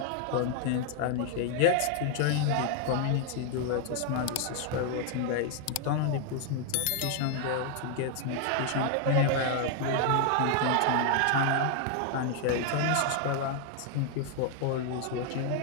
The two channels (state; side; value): different; both; correlation 0.00